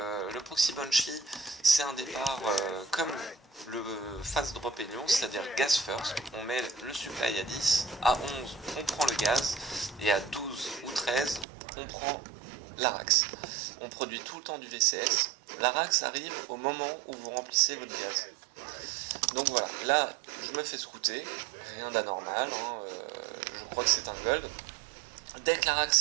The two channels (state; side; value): drops out; left; at 11.5 s